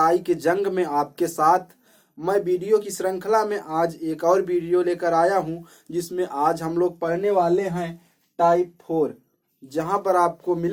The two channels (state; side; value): identical; both; correlation 1.00